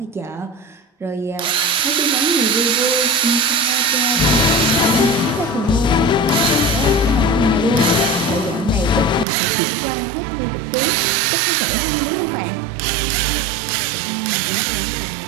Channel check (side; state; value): left; drops out; at 9.2 s